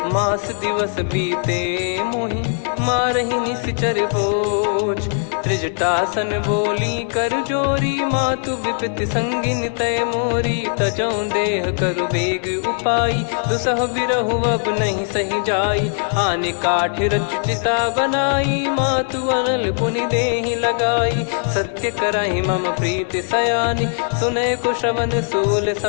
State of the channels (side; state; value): right; silent; 66 dB below the other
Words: मास दिवस बीते मोहि मारहि निश्चर बोझ। त्रिजटासन बोली कर जोरी, मातु विपत्ति संगिन तय मोरी। तजौ देह करु बेग उपाई, दुसह बिरहु अब नहीं सही जाई। आने काठ रचिता बनाई, मातु अनल पुनि देहि लगाई। सत्य करहि मम प्रीति सयानी, सुनय को श्रवण सूल